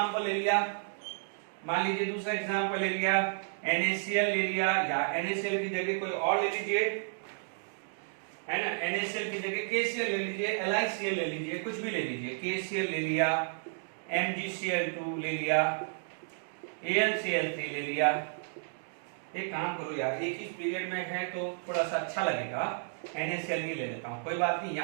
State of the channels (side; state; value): left; silent; digital silence